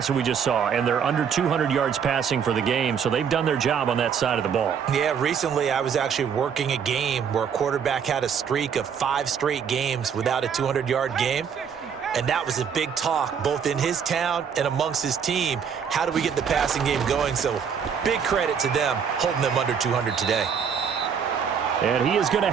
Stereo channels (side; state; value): left; quieter; 7.2 dB